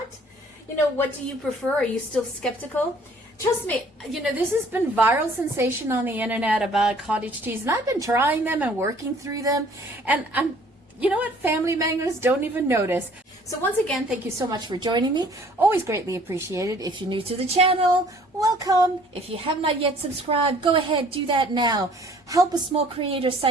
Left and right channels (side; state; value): both; normal; correlation 0.56